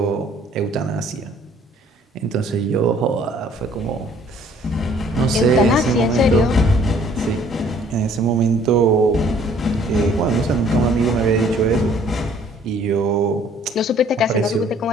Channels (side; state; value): both; normal; correlation 0.58